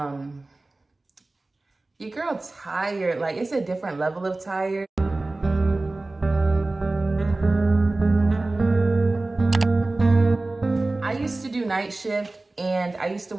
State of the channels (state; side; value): quieter; left; 3.0 dB